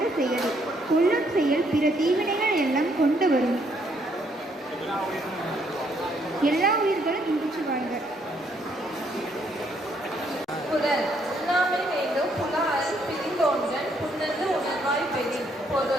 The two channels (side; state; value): both; normal; correlation 0.70